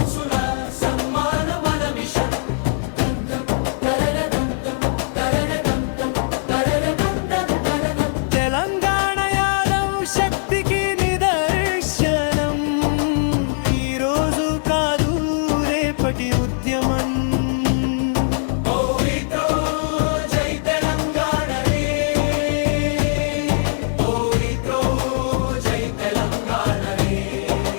సన్మాన మన మిషన్. తెలంగాణ యాదవ్ శక్తికి నిదర్శనం. ఈరోజు కాదు రేపటి ఉద్యమం. ఓరితో జై తెలంగాణ రే, ఓరితో జై తెలంగాణ రే.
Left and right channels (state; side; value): silent; right; 55 dB below the other